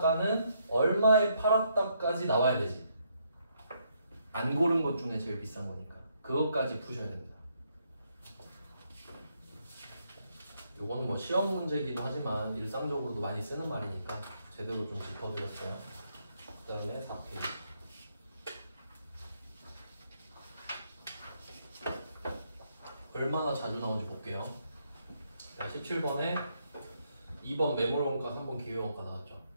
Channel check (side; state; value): both; inverted; correlation -0.74